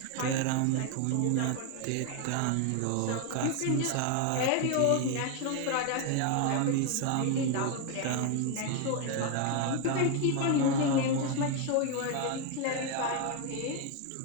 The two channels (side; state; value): both; different; correlation 0.01